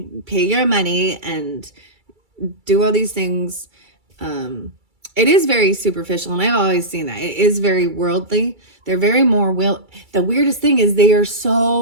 pay your money and do all these things. It is very superficial, and I've always seen that. It is very worldly. They're very more the weirdest thing is they are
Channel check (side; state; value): left; late; 2.3 ms